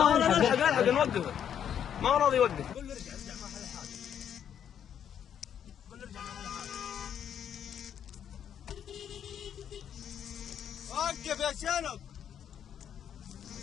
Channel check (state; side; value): quieter; right; 9.0 dB